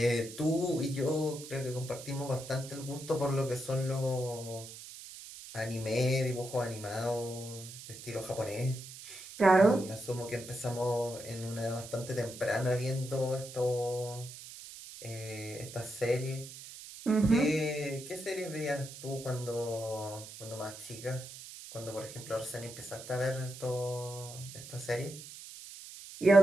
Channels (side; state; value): right; noise; hiss, 13 dB below the sound